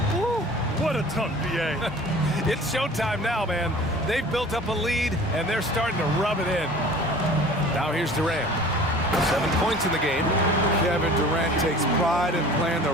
Woo, what a dunk, B.A. It's showtime now, man. They've built up a lead, and they're starting to rub it in. Now here's Durant. 7 points in the game. Kevin Durant takes pride in playing the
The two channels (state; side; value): normal; both; correlation 0.44